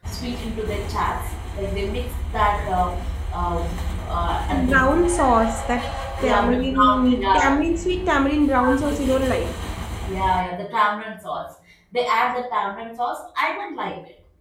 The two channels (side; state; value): both; identical; correlation 1.00